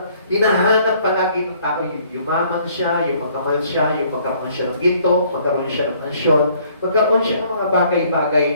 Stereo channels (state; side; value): inverted; both; correlation -0.61